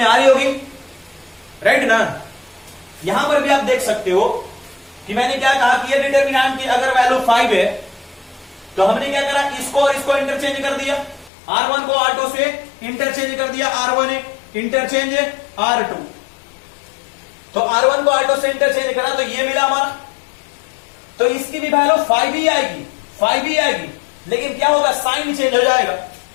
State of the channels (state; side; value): drops out; right; at 11.3 s